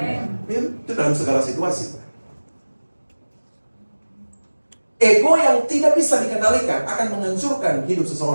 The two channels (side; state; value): both; inverted; correlation -1.00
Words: Ya, itu dalam segala situasi. Ego yang tidak bisa dikendalikan akan menghancurkan hidup